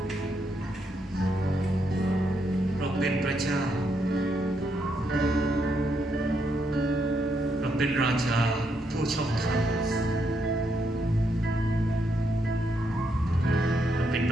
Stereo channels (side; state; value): both; normal; correlation 0.78